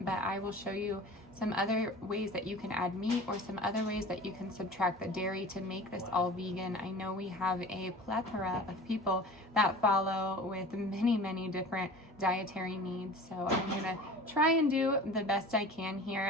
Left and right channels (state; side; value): normal; both; correlation 0.40